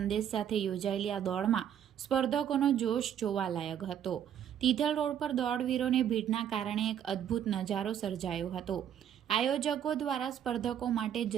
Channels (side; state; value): left; quieter; 9.6 dB